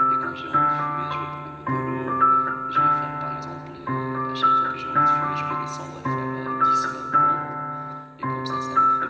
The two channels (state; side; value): identical; both; correlation 1.00